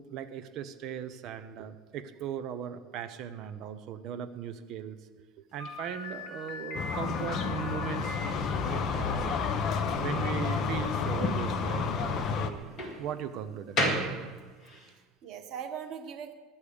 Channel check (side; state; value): both; normal; correlation 0.40